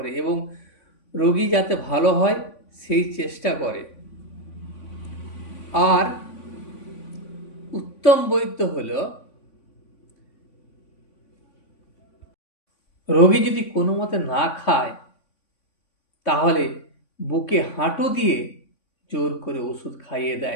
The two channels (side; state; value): right; late; 3.5 ms